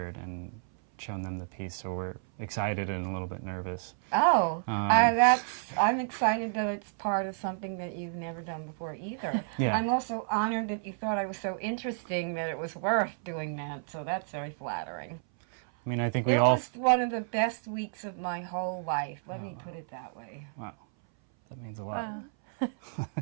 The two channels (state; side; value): silent; left; 57 dB below the other